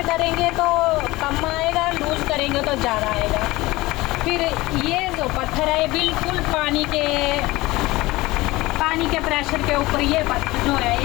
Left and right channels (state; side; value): quieter; right; 20.0 dB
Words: करेंगे तो कम आएगा, लूज करेंगे तो ज़्यादा आएगा। फिर ये जो पत्थर है बिल्कुल पानी के प्रेशर के ऊपर ये पत्थर जो है